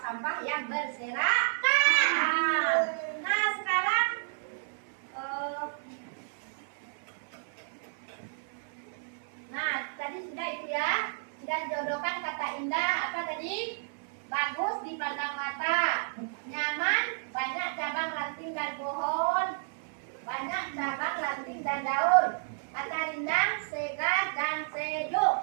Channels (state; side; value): silent; left; 57 dB below the other